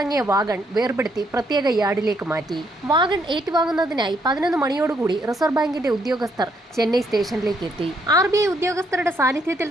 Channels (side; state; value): both; normal; correlation 0.72